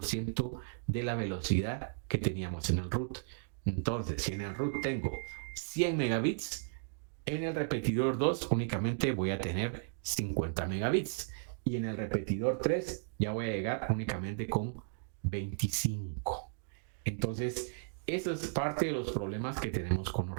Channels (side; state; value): left; silent; digital silence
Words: de la velocidad que teníamos en el root. Entonces, si en el root tengo 100 megabits, en el repetidor 2 únicamente voy a tener 50 megabits. Y en el repetidor 3 ya voy a llegar únicamente con 25. Entonces, eso es parte de los problemas que tenemos con los